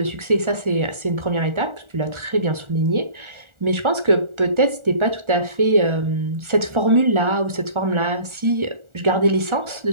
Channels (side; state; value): left; late; 1.4 ms